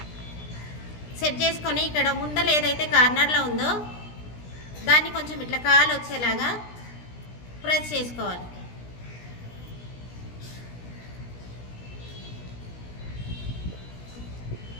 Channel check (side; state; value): right; late; 17 ms